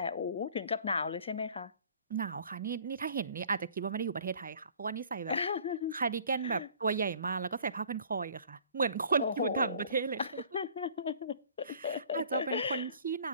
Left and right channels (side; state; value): both; inverted; correlation -0.52